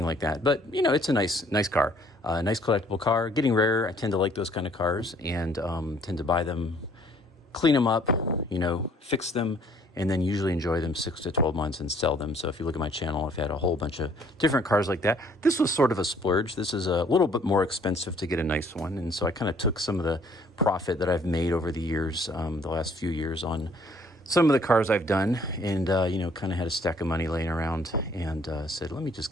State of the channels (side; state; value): both; normal; correlation 0.60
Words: like that. But, it's a nice car, a nice collectible car. Getting rare. I tend to like those kind of cars and tend to buy them, clean them up, fix them, and then usually enjoy them 6 to 12 months and sell them. So if you look at my channel, I've had a whole bunch of different cars like that. This was sort of a splurge. This is a little bit more expensive to get a nice one. And so I kind of took some of the profit that I've made over the years, the last few years on some of the cars I've done, and kind of had a stack of money laying around and said, let me just